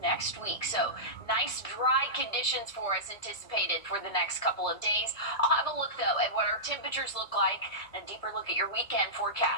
week. So nice dry conditions for us anticipated for the next couple of days. I'll have a look though at what our temperatures look like and a deeper look at your weekend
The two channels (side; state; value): right; late; 1.7 ms